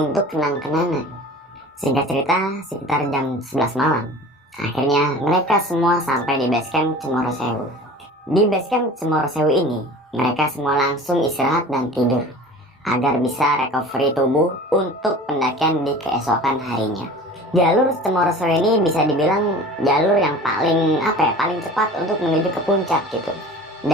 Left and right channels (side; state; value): both; normal; correlation 0.40